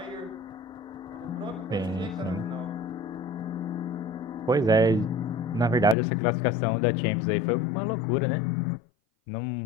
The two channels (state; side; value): drops out; right; at 6.0 s